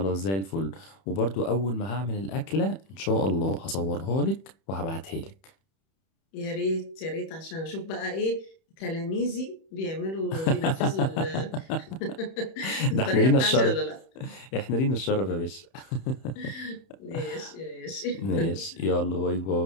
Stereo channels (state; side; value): late; right; 31 ms